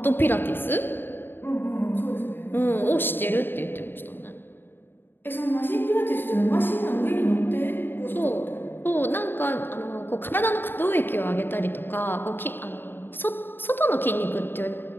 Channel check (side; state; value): right; late; 0.098 ms